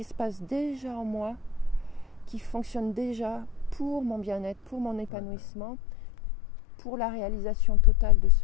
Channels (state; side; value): drops out; right; at 5.1 s